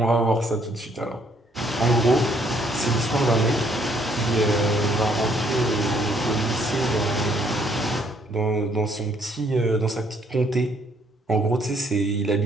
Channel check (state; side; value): normal; both; correlation 0.66